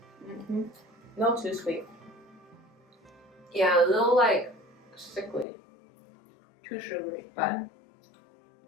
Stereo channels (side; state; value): right; drops out; at 5.5 s